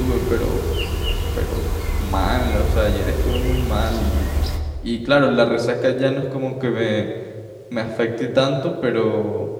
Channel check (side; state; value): both; identical; correlation 1.00